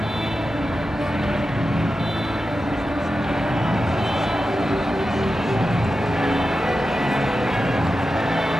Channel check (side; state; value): both; normal; correlation 0.91